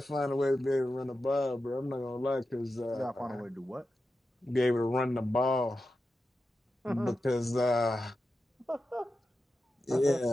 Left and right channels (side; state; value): both; normal; correlation 0.91